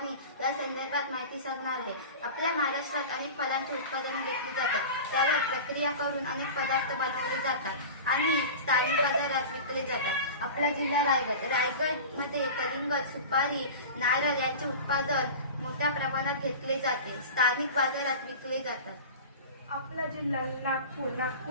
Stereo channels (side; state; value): both; inverted; correlation -0.32